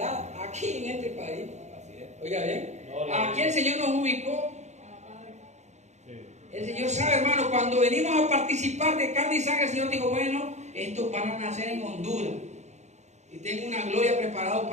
aquí en este país. Oiga bien, aquí el Señor nos ubicó. El Señor sabe, hermano, cuando venimos a participar de carne y sangre, el Señor dijo, bueno, estos van a nacer en Honduras. Y tengo una gloria preparada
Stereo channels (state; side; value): late; left; 0.33 ms